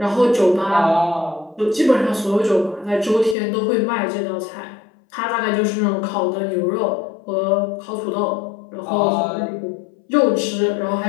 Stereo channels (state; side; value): drops out; right; at 3.4 s